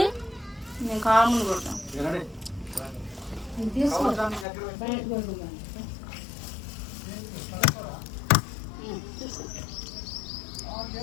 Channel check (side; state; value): right; drops out; at 4.5 s